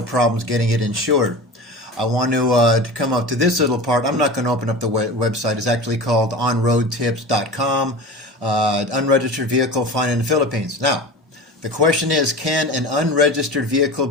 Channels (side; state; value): both; normal; correlation 0.32